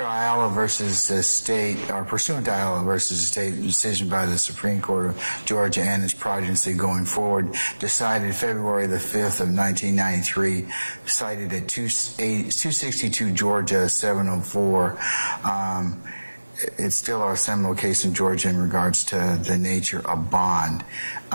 Ayala versus the state, or pursuant to Ayala versus the state decision by the Supreme Court of Georgia and its progeny going forward, decided February the 5th of 1993, cited at 262 Georgia 704. It's still our seminal case in Georgia in regards to the nature of bond.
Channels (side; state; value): both; inverted; correlation -1.00